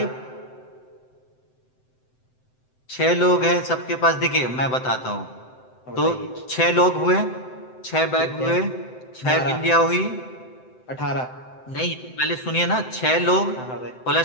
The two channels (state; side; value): late; right; 7.8 ms